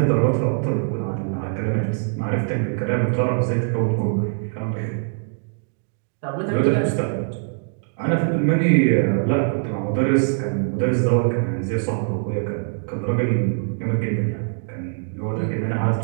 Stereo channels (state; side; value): silent; left; digital silence